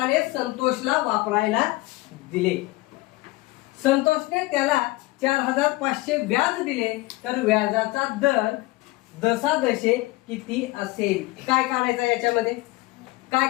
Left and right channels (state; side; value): quieter; right; 20.9 dB